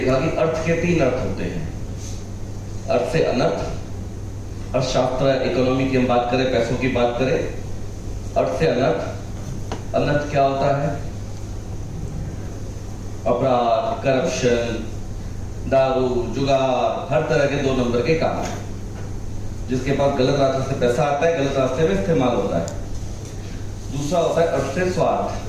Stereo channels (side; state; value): both; identical; correlation 1.00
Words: कि अर्थ के 3 अर्थ होते हैं। अर्थ से अनर्थ, अर्थशास्त्र इकोनॉमी की हम बात करें, पैसों की बात करें, अर्थ से अनर्थ। अनर्थ क्या होता है? अपराध, करप्शन, दारू, जुगार, हर तरह के 2 नंबर के काम, जिसके पास गलत रास्ते से पैसा आता है, गलत रास्ते में इस्तेमाल होता है। दूसरा होता है अर्थ से स्वार्थ।